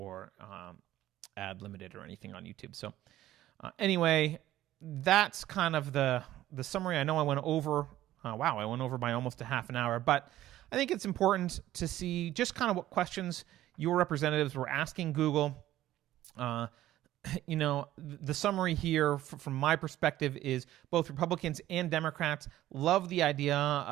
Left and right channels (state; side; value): quieter; left; 14.2 dB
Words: ad limited or anything on YouTube. So anyway, that's kind of the summary. I know I went over. I went over by almost a half an hour, but I think it's important to see just kind of what questions your representatives were asking Google. The summary here from my perspective is both Republicans and Democrats love the idea